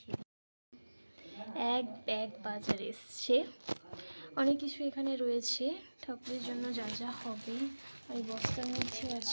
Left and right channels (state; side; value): inverted; both; correlation -1.00